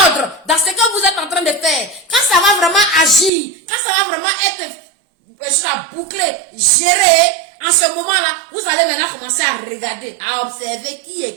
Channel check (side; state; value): left; drops out; at 3.3 s